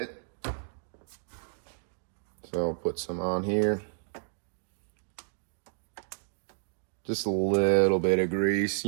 So So I'll put some on here. Just a little bit of grease.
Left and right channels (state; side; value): silent; left; digital silence